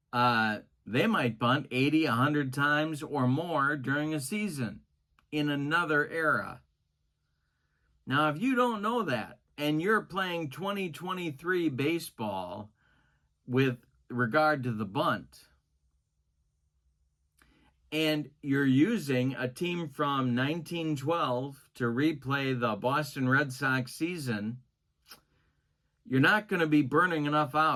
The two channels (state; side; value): identical; both; correlation 1.00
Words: they might bunt 80, 100 times or more during a season in another era. Now, if you don't know that and you're playing 2023 baseball with regard to the bunt, and you're using a team from 1912 to replay the Boston Red Sox season, you're not going to be burning enough